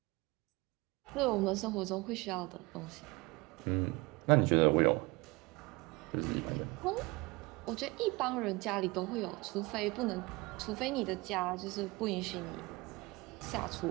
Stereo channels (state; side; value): quieter; left; 24.0 dB